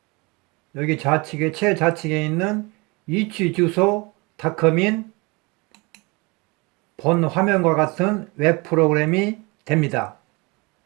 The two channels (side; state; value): left; quieter; 26.8 dB